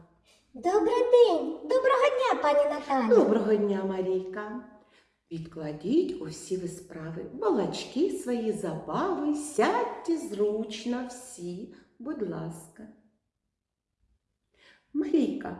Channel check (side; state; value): both; identical; correlation 1.00